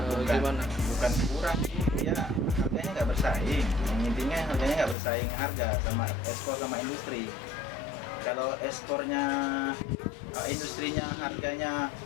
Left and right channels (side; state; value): right; drops out; at 5.0 s